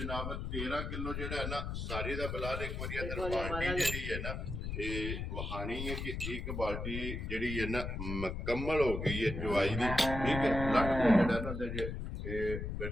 13 ਕਿਲੋ ਜਿਹੜਾ ਹੈ ਨਾ ਸਾਰੀ ਦਾ ਬਲਾਲ ਇੱਕ ਵਾਰੀ ਅੰਦਰ ਬਾਲਟੀ ਜਿਹੜੀ ਹੈ ਨਾ ਇਹ ਵਹਾਣੀ ਹੈ ਕਿ ਇੱਕ ਬਾਲਟੀ ਜਿਹੜੀ ਹੈ ਨਾ ਮੁਕੰਮਲ ਹੋ ਗਈ ਹੈ ਚਵਾਈ ਦੀ ਠੀਕ ਹੈ ਲੱਟ ਦੇ ਜਿਹੜਾ ਨਾ ਦੇ ਇਹ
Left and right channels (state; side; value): noise; left; rumble, 4 dB below the sound